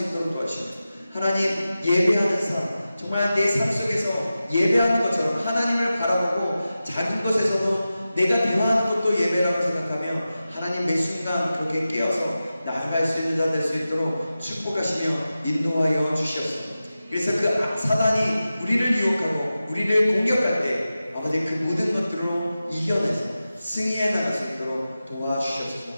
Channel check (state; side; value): inverted; both; correlation -0.94